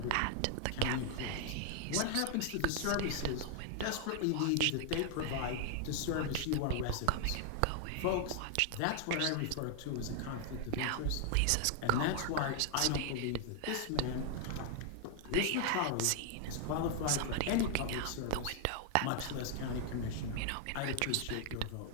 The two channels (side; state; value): both; different; correlation 0.00